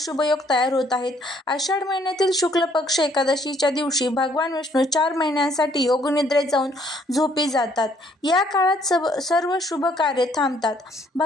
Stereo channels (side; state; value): both; normal; correlation 0.65